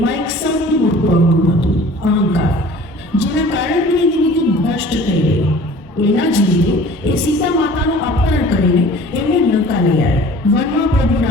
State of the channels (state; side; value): normal; both; correlation 0.47